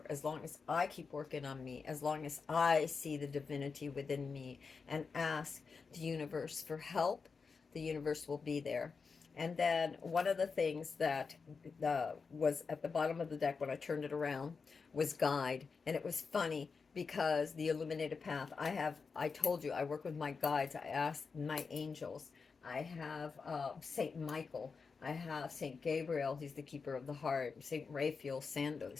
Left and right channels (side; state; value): right; quieter; 5.0 dB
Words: as long as I keep working on me, as long as I see the divinity within me and ask the universe for help, the universe will be there. And then one of the things that was at the bottom of the deck when I turned it around was guide. And it was funny because the illuminated path, I told you, I work with my guides. I ask my angels. I have Saint Michael. I have Saint Gabriel. He's the keeper of the heart. Saint Raphael,